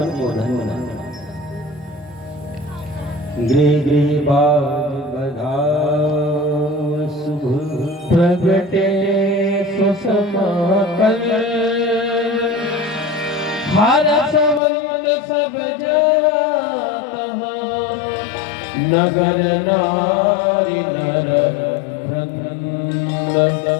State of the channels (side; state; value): right; drops out; at 14.6 s